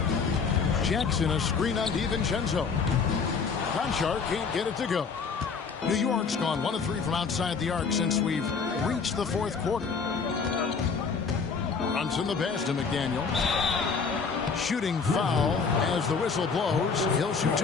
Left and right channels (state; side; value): quieter; right; 5.3 dB